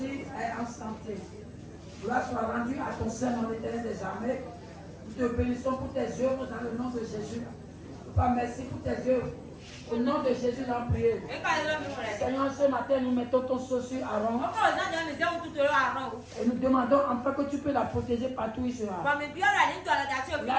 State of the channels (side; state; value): both; identical; correlation 1.00